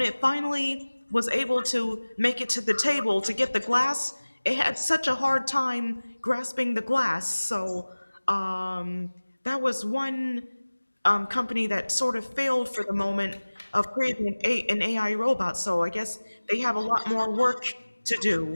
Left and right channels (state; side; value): inverted; both; correlation -1.00